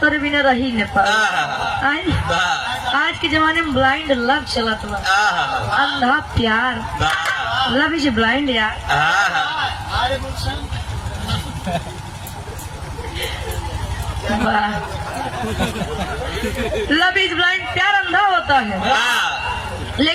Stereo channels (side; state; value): both; identical; correlation 1.00